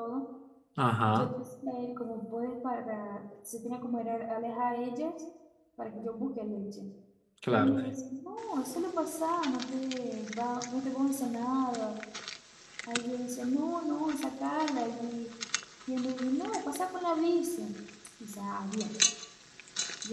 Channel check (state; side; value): identical; both; correlation 1.00